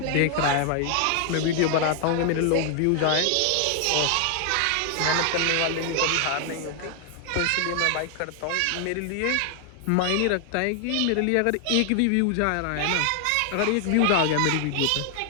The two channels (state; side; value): different; both; correlation 0.00